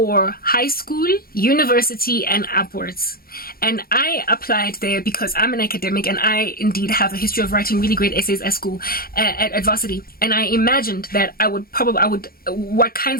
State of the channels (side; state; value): right; late; 0.43 ms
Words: high school, university, and upwards. And I applied there because I'm an academic and I indeed have a history of writing really great essays at school, at varsity. And I imagined that what